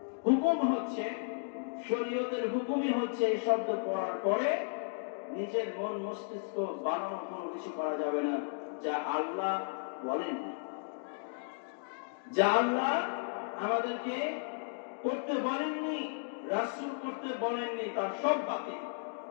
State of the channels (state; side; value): silent; right; digital silence